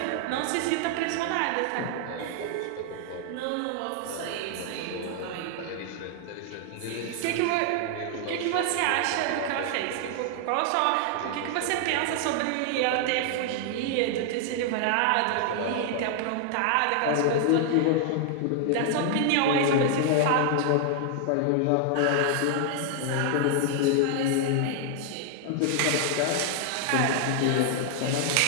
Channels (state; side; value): different; both; correlation 0.00